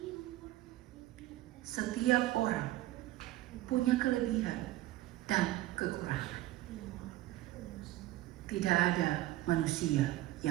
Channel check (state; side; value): quieter; left; 16.2 dB